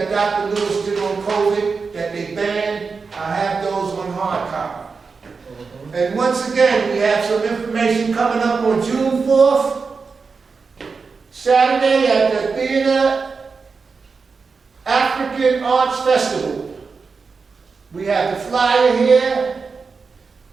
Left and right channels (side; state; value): left; quieter; 4.8 dB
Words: Dr. Lewis did on COVID that they banned. I have those on hard copy. And once again, we have some information coming up on June 4th, Saturday at the Theater African Arts Festival. We have the flyer here,